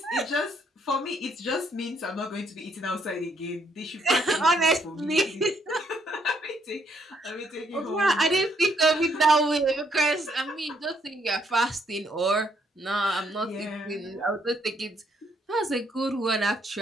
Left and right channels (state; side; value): normal; both; correlation 0.71